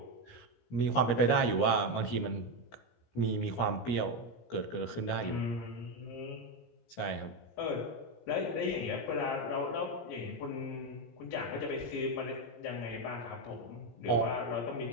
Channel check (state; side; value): late; right; 17 ms